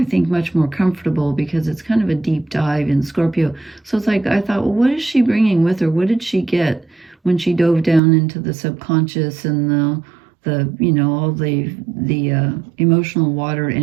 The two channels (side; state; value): left; drops out; at 8.0 s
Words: think, much more comfortable because it's kind of a deep dive in Scorpio. So it's like, I thought, well, what is she bringing with her? What did she get when she dove down into the subconscious and the you know, all the emotional water